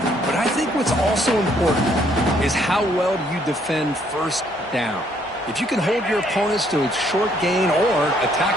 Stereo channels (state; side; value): normal; both; correlation 0.67